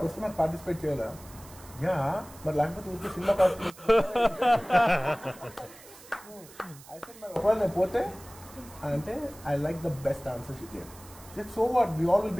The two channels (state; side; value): noise; right; hiss, 20 dB below the sound